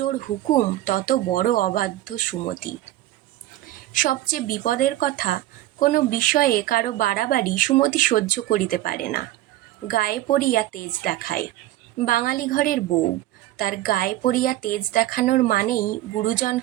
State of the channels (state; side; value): quieter; left; 15.1 dB